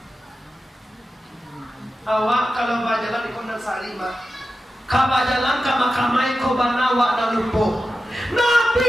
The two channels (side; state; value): both; normal; correlation 0.92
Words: Awak kalau berjalan di Kondang Sarima, kau berjalan ke makamai kau banawa dan lupa. Nabi